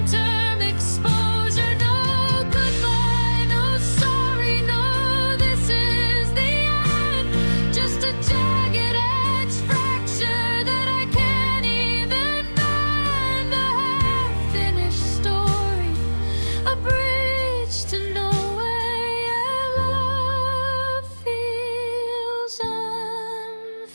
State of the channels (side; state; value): both; inverted; correlation -1.00